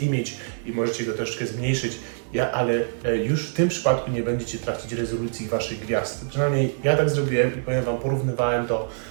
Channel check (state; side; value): silent; left; 59 dB below the other